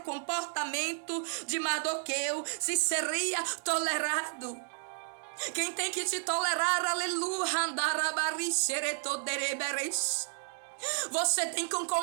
comportamento de Mardoqueu, se seria tolerado. Quem tem que te tolerar, aleluia, você tem que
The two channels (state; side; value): silent; left; digital silence